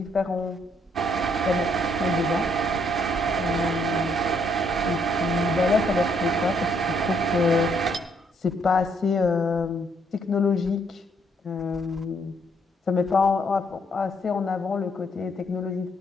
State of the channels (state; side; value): normal; both; correlation 0.70